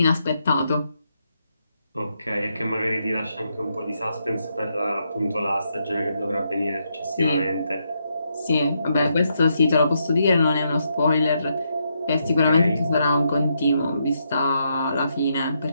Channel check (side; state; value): both; inverted; correlation -0.79